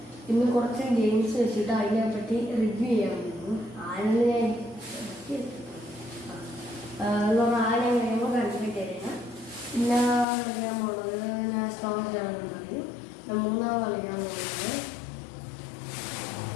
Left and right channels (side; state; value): right; drops out; at 10.2 s